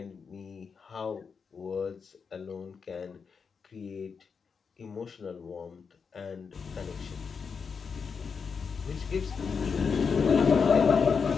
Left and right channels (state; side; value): quieter; right; 5.7 dB